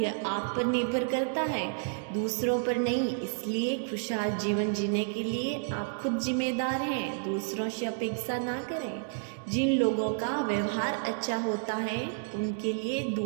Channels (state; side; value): silent; left; digital silence